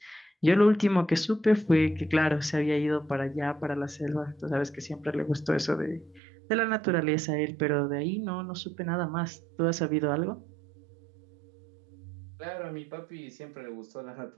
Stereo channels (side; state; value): left; drops out; at 6.2 s